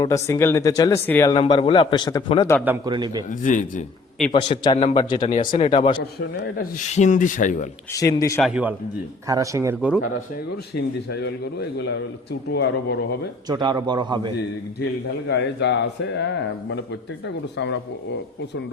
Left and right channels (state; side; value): quieter; right; 3.3 dB